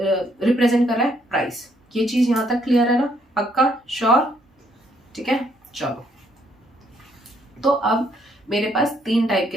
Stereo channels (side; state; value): both; normal; correlation 0.70